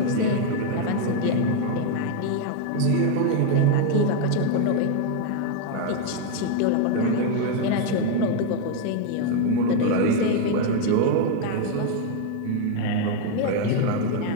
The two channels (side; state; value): both; different; correlation 0.01